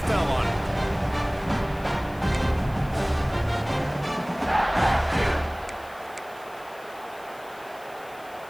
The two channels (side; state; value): left; noise; hiss, 24 dB below the sound